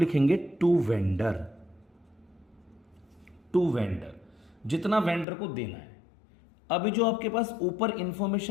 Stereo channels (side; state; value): right; drops out; at 5.2 s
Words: टू वेंडर। टू वेंडर, जितना वेंडर को देना है। अभी जो आपके पास ऊपर